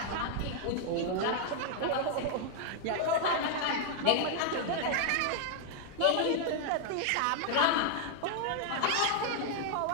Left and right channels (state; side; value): different; both; correlation 0.00